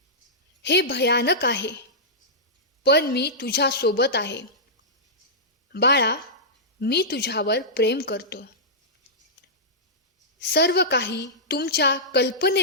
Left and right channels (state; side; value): normal; both; correlation -0.14